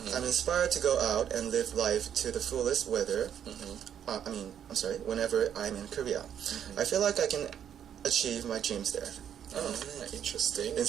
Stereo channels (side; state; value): left; quieter; 9.2 dB